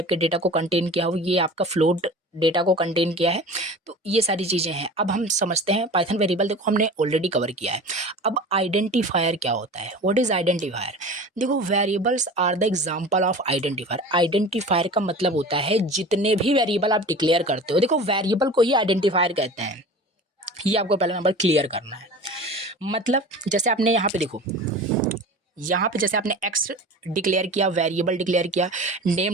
के डेटा को कंटेन किया हुआ है, ये आपका फ्लोट डेटा को कंटेन किया है। तो ये सारी चीज़ें हैं। अब हम समझते हैं पाइथन वेरिएबल, देखो हमने ऑलरेडी कवर किया है। अब आइडेंटिफायर क्या होता है, व्हाट इज़ आइडेंटिफायर। देखो variables are the example of identifier. Identifier का मतलब होता है जितने भी वेरिएबल आप डिक्लेयर करते हो, देखो वेरिएबल को ही आइडेंटिफायर कहते हैं। ये आपको पहला नंबर क्लियर करना है। मतलब जैसे आपने यहाँ पे देखो, यहाँ पे जैसे आपने एक्स डिक्लेयर किया, वेरिएबल डिक्लेयर किया,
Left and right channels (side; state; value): both; normal; correlation 0.37